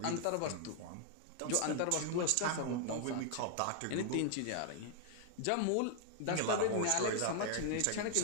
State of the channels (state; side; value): different; both; correlation 0.00